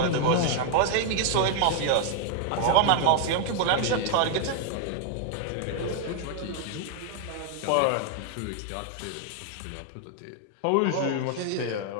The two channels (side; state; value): both; different; correlation 0.00